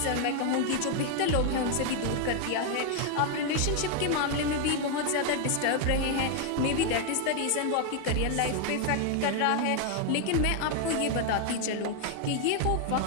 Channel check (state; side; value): different; both; correlation 0.00